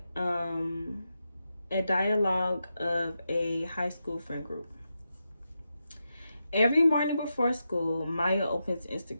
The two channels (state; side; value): inverted; both; correlation -0.88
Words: a dialogue of a high school friend group. Every morning before school, Maya opens